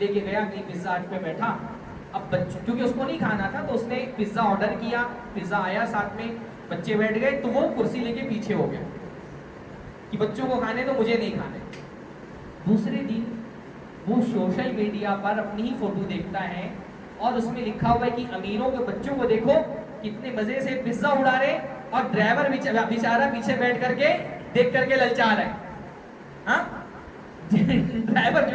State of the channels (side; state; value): both; identical; correlation 1.00